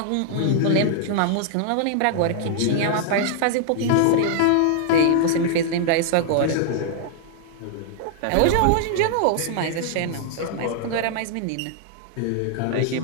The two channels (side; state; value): both; different; correlation -0.01